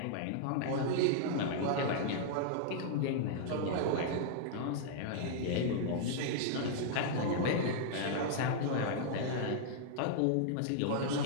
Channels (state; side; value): different; both; correlation -0.01